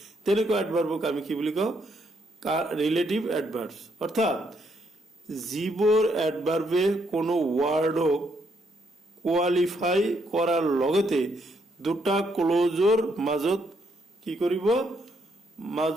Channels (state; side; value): normal; both; correlation 0.74